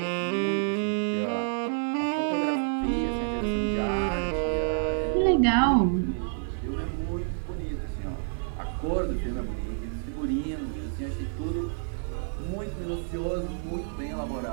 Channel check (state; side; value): silent; left; digital silence